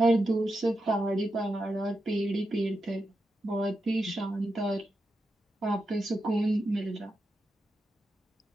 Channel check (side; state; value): both; normal; correlation 0.87